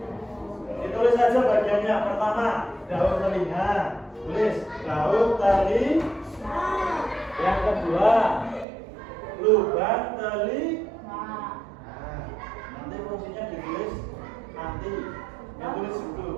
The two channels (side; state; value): left; drops out; at 8.7 s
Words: Ditulis saja bagiannya. Pertama, daun telinga. Tulis daun telinga. Yang kedua, lubang telinga. Nah, nanti fungsinya ditulis nanti. Yang tulis